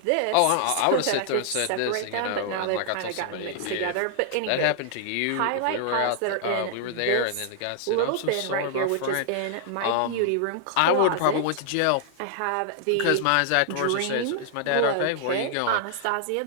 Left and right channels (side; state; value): both; different; correlation -0.01